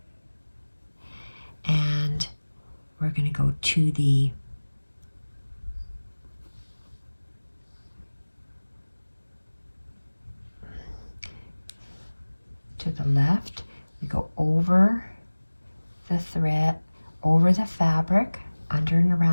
and we're going to go to the left. We go over the thread, over the fabric, under and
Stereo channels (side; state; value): both; inverted; correlation -1.00